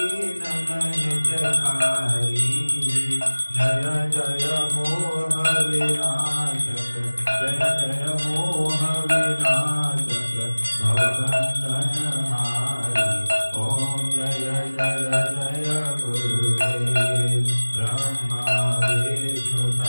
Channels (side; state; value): both; inverted; correlation -1.00